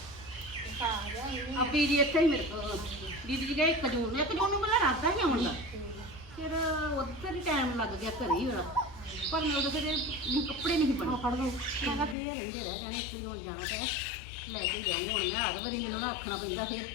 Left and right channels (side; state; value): right; drops out; at 12.2 s